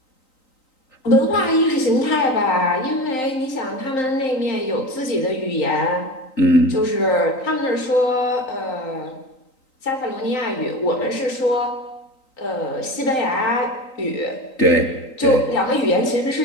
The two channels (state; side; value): late; right; 3.9 ms